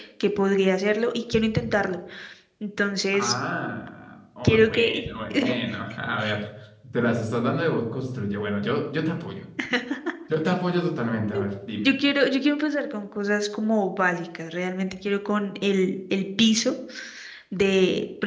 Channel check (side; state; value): both; identical; correlation 1.00